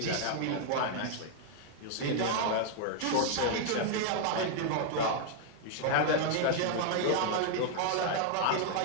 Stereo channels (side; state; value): both; different; correlation 0.00